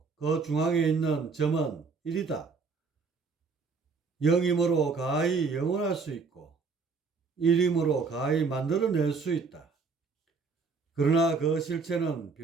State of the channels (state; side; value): quieter; left; 4.7 dB